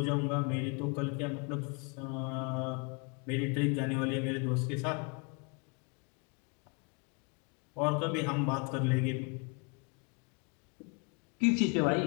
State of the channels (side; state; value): right; quieter; 33.6 dB